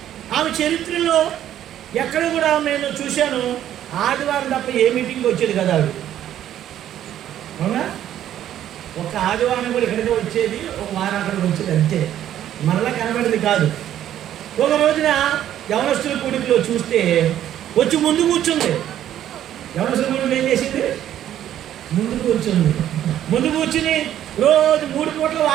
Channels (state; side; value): quieter; left; 11.4 dB